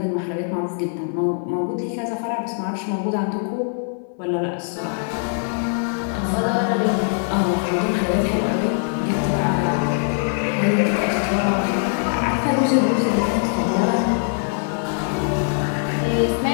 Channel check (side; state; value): right; silent; 64 dB below the other